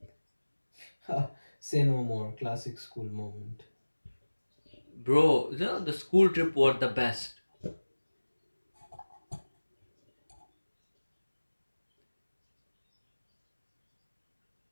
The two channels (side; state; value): both; inverted; correlation -1.00